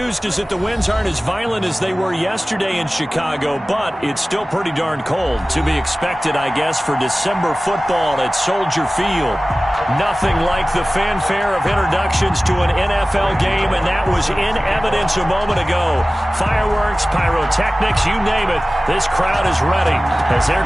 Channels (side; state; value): both; normal; correlation 0.97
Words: is that the winds aren't as violent as they were yesterday in Chicago, but it's still pretty darn cold. To be expected, I guess, for December football at Soldier Field. Nothing like the fanfare of introductions to an NFL game, and that was in evidence a moment ago. Fireworks, pyrotechnics, you name it. This crowd is ready as their